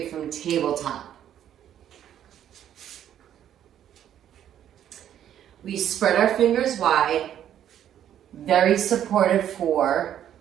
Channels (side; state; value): left; quieter; 10.5 dB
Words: from tabletop. We spread our fingers wide, very supportive for